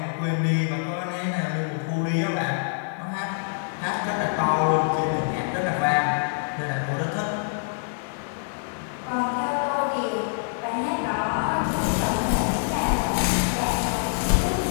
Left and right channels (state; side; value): silent; right; digital silence